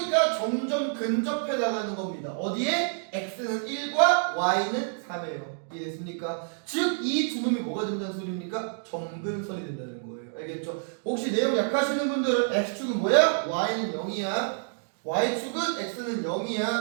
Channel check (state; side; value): silent; left; digital silence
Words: 점점 근접해 나가는 겁니다. 어디에? x는 1과 y는 3이에요. 이해됐습니까? 즉, 이 두 놈이 뭐가 된다는 소리입니까? 점근선이 된다는 거예요. 알겠죠? 혹시 내용 약하시는 분들은 x축은 뭐야? y는 0이야. y축은 x는